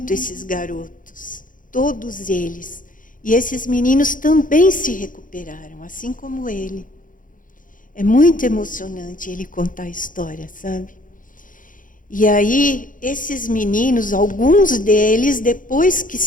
esses garotos, todos eles. E esses meninos também se recuperaram, assim como ele. É muito emocionante ele contar a história, sabe? E aí, esses meninos, alguns deles, depois que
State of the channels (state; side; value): late; right; 0.39 ms